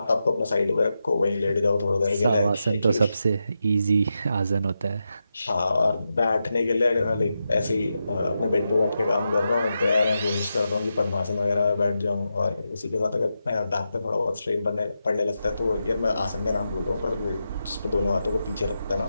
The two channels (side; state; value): both; inverted; correlation -0.88